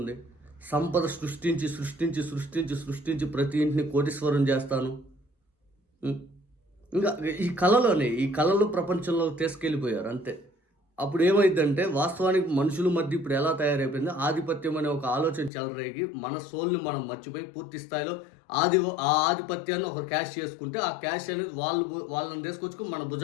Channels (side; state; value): right; drops out; at 15.5 s